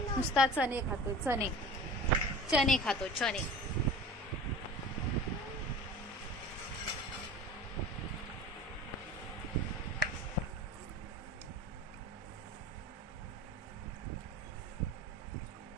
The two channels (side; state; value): both; normal; correlation 0.38